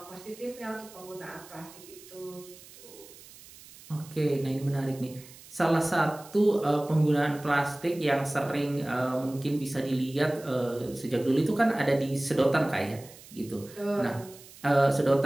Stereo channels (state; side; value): noise; right; hiss, 20 dB below the sound